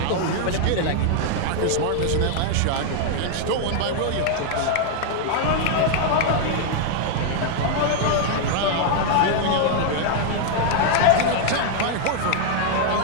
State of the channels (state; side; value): different; both; correlation 0.00